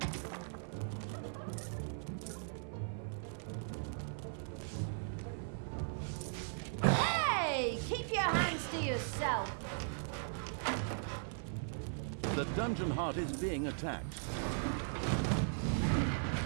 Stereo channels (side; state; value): left; silent; 52 dB below the other